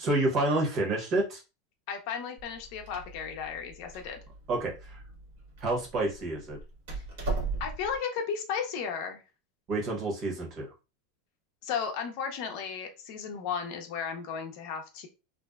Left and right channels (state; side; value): normal; both; correlation 0.34